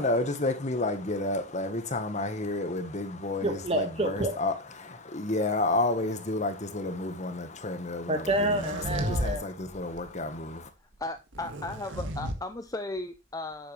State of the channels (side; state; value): both; normal; correlation 0.18